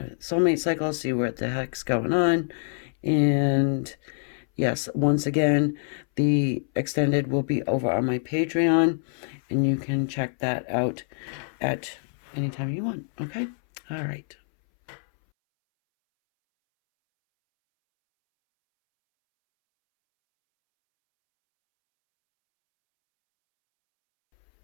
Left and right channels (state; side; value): silent; right; 61 dB below the other